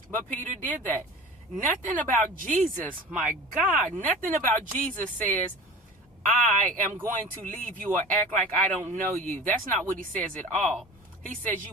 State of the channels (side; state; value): both; normal; correlation 0.37